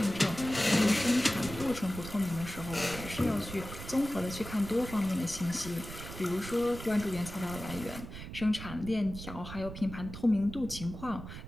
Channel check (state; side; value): noise; right; rumble, 11 dB below the sound